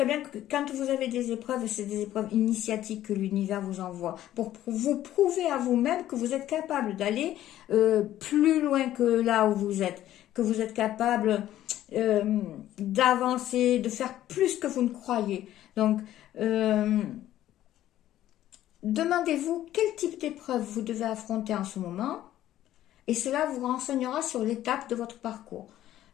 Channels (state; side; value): quieter; right; 13.0 dB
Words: bien que quand vous avez des épreuves, c'est des épreuves initiatiques que l'univers vous envoie pour vous prouver à vous-même que vous êtes capable d'aller plus loin que là où vous êtes, que vous êtes capable d'avancer, de faire plus que vous ne croyez. Donc, demandez-vous quel type d'épreuve vous devez affronter en ce moment et cela vous renseignera sur l'étape de votre parcours.